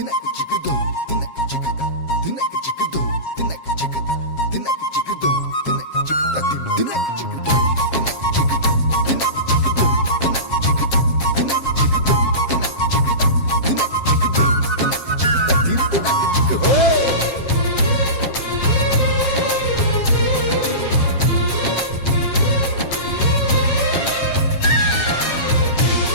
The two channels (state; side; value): late; right; 7.4 ms